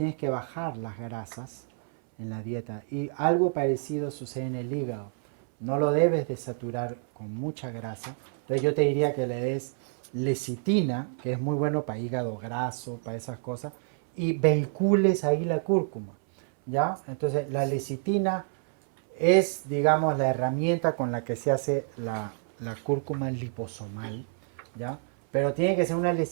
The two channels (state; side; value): silent; left; 59 dB below the other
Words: que bajar las grasas en la dieta. Y algo parecido sucede en el hígado. No lo debes de saturar con mucha grasa. Entonces, yo te diría que le des lecitina, que es muy bueno para hígado graso, para esas cosas, y vehicules ahí la cúrcuma, ¿ya? Entonces, la lecitina es, digamos, la herramienta con la que se hace la cúrcuma liposomal, ¿ya? Pero tiene que ser una